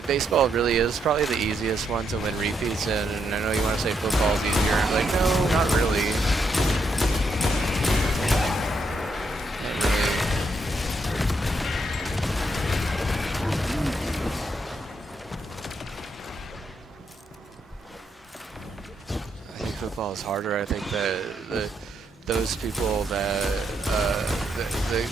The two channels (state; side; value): normal; both; correlation 0.78